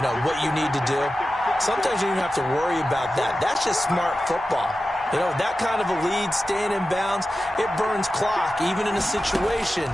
know, what you need to do? Sometimes you don't have to worry about that. That's just smart football. You know, that kind of a lead, staying in bounds, it burns clock, even in a situation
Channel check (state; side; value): normal; both; correlation 0.93